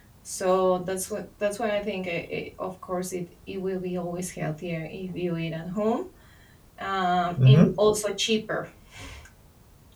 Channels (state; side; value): identical; both; correlation 1.00